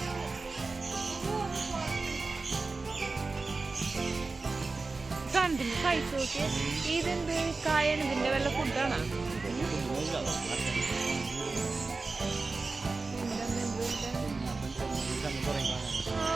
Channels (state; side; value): quieter; left; 3.8 dB